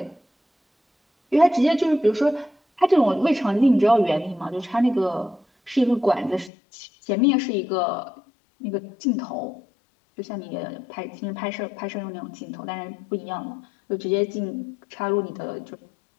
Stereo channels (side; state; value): right; drops out; at 6.5 s